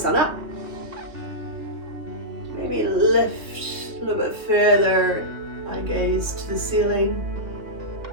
on up, maybe lift a little bit further, eye gaze to the ceiling,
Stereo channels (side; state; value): left; late; 2.9 ms